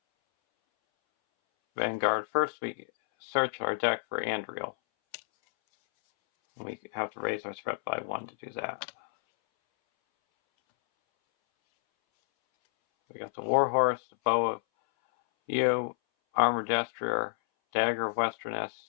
Vanguard. First we search our deck for Andriel. We have to raise our threat by 1 to do that. We got the Warhorse, the Bow of View, Armor Destrier, Dagger of Westerness,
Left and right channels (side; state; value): right; silent; 58 dB below the other